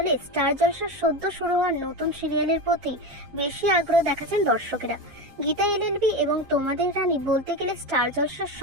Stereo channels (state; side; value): late; left; 7.4 ms